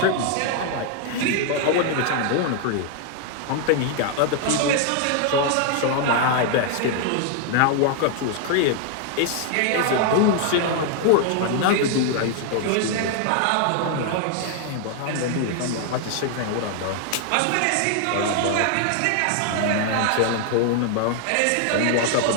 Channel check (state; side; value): different; both; correlation 0.00